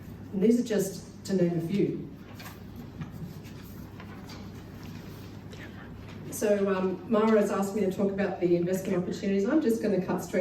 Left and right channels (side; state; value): both; identical; correlation 1.00